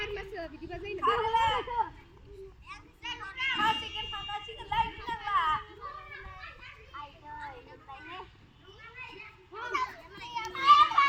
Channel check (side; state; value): both; identical; correlation 1.00